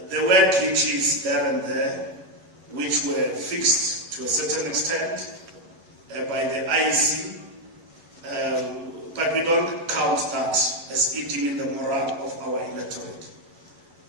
There were glitches there and there, which were fixed to a certain extent by the IEC, but we don't count that as eating in the morale of our electorate.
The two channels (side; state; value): left; late; 10 ms